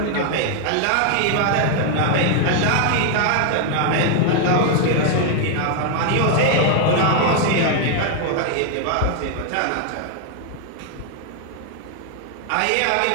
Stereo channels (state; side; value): different; both; correlation 0.00